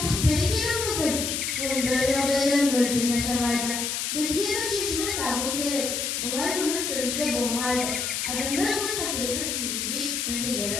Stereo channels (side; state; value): left; noise; hiss, 1 dB below the sound